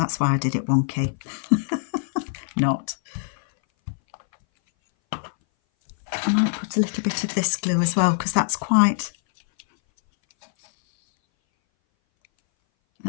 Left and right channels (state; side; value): silent; right; 60 dB below the other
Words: why I did it wonky. Not. I might put a little bit of this glue as well because that's quite